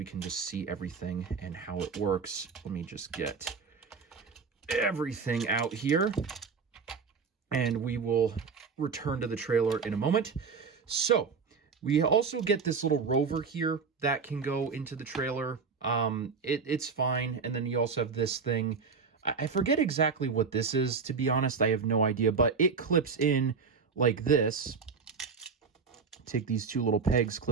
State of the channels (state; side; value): quieter; left; 5.3 dB